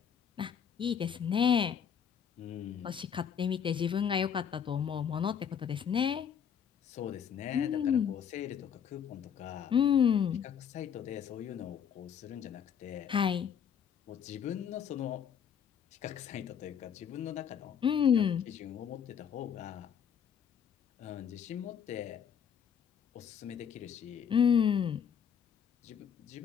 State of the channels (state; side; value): quieter; right; 7.9 dB